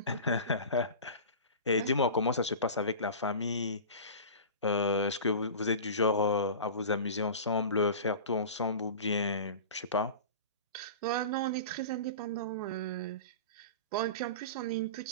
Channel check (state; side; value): inverted; both; correlation -0.33